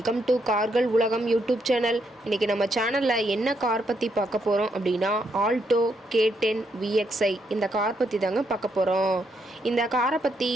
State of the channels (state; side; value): normal; both; correlation 0.77